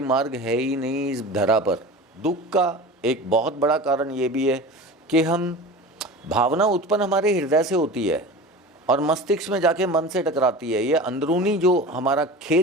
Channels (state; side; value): normal; both; correlation 0.34